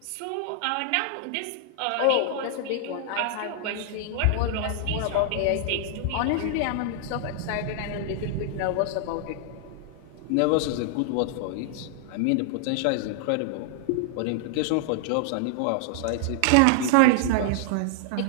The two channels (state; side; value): different; both; correlation -0.01